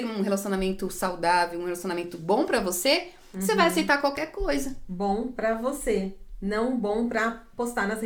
um relacionamento saudável, um relacionamento bom pra você, você vai aceitar qualquer coisa. Bom pra você, não bom pra postar nas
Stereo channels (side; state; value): both; identical; correlation 1.00